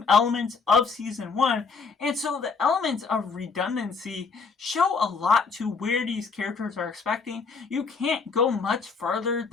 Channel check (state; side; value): quieter; right; 5.0 dB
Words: elements of season 1, and so the elements of redundancy show a lot to where these characters are expecting. You can't go much further